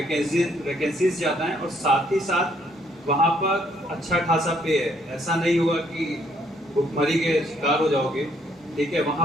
ज़्यादा हैं, और साथ ही साथ वहाँ पर अच्छा खासा पे है। ऐसा नहीं होगा कि भुखमरी के शिकार हो जाओगे, ठीक है,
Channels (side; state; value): both; normal; correlation 0.68